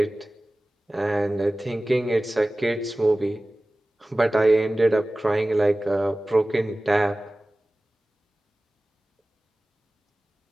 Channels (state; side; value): normal; both; correlation 0.97